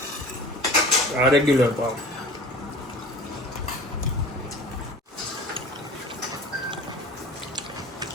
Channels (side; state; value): both; normal; correlation 0.41